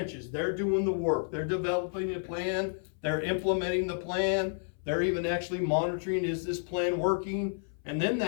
they're doing the work, they're developing a plan, they're implementing the plan, they're even actually monitoring, is this plan working? And then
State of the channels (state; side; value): silent; right; 57 dB below the other